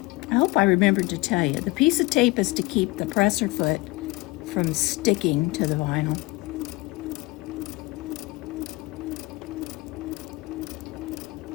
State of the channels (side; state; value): right; quieter; 22.1 dB